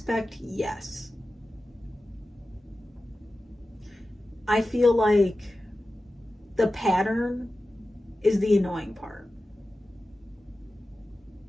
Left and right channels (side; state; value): both; normal; correlation 0.94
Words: yes. I feel like the pattern is the annoying part.